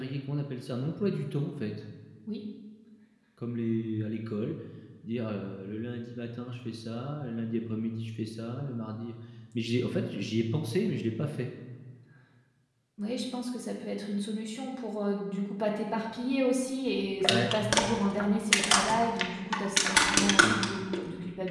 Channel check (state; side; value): identical; both; correlation 1.00